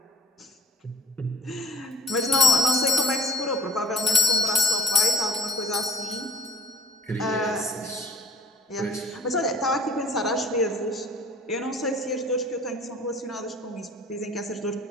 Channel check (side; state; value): both; normal; correlation 0.50